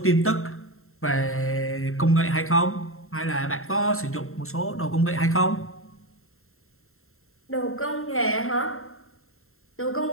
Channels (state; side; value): late; right; 0.62 ms